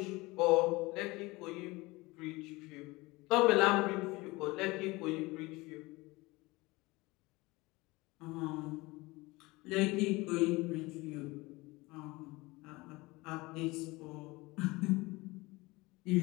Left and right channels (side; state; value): right; quieter; 22.5 dB